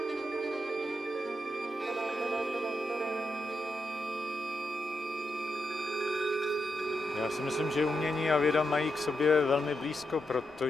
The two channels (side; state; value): both; normal; correlation 0.85